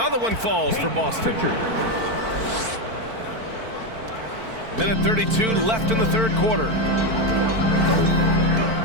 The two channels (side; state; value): left; late; 4.5 ms